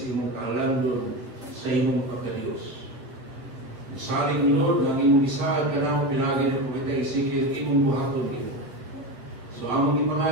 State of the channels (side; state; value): left; late; 7.6 ms